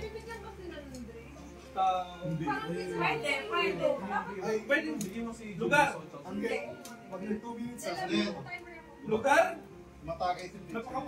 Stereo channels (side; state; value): both; identical; correlation 1.00